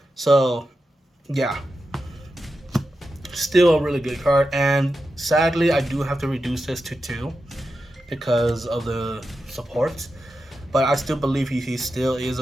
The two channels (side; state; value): both; normal; correlation 0.90